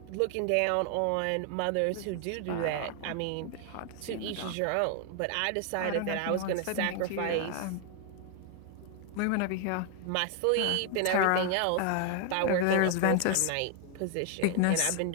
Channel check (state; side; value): different; both; correlation 0.00